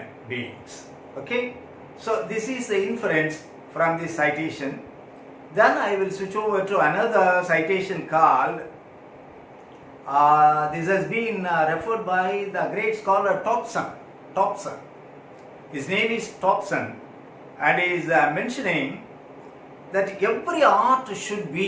beings. Okay, so this is the inference from this citation. Then I will switch over to another citation called, this has been referred by the great scholar Thompson. His name is Thompson, and he is mentioning that every art should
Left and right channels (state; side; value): identical; both; correlation 1.00